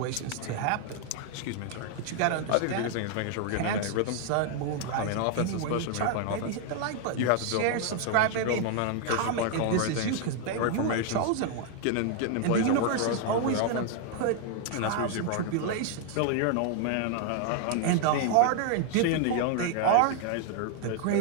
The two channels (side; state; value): both; different; correlation 0.00